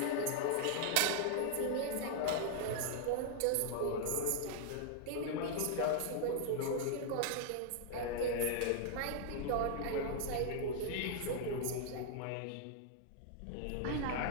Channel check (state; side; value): different; both; correlation -0.01